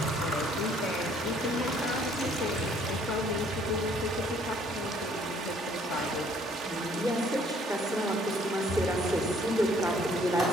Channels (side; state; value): both; normal; correlation 0.61